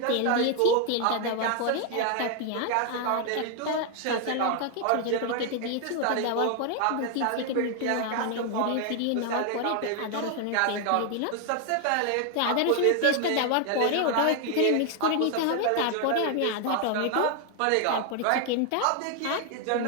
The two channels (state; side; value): different; both; correlation 0.01